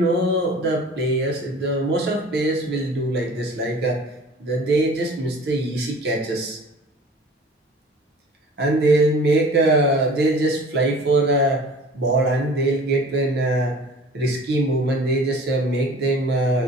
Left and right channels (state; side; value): normal; both; correlation 0.45